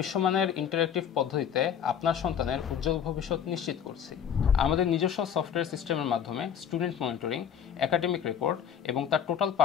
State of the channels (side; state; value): right; quieter; 8.4 dB